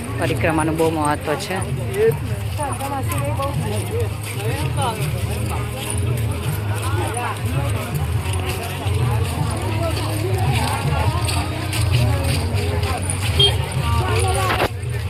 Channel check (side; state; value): both; identical; correlation 1.00